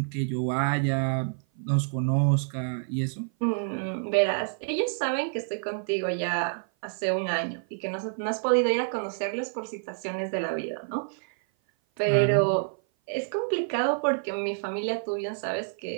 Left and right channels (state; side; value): silent; left; 56 dB below the other